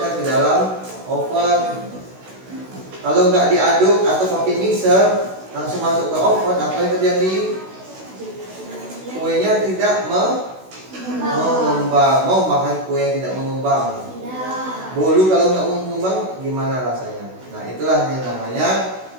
ke dalam oven. Kalau nggak diaduk atau pakai mixer, langsung masuk ke oven, apa yang terjadi? Kuenya tidak mengembang. Mau makan kue yang tidak mengembang? Bolu kalau nggak mengembang gimana rasanya? Nah, itulah yang namanya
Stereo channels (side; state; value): left; late; 16 ms